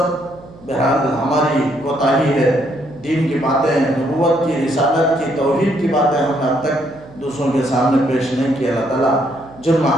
بہرحال ہماری کوتاہی ہے، دین کی باتیں، نبوت کی، رسالت کی، توحید کی باتیں ہم نے اب تک دوسروں کے سامنے پیش نہیں کی۔ اللہ تعالیٰ جرم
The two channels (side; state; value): right; noise; hum, 21 dB below the sound